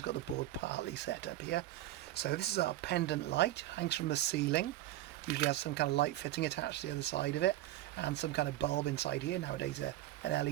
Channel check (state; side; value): quieter; left; 14.5 dB